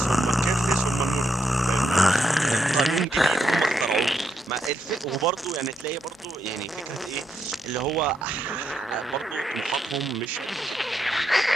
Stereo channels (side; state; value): both; normal; correlation 0.81